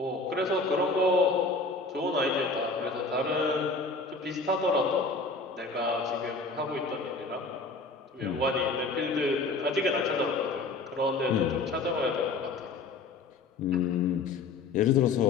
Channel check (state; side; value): quieter; right; 3.7 dB